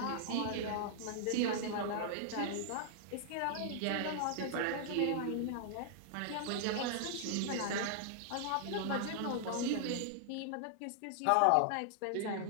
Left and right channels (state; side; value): different; both; correlation -0.01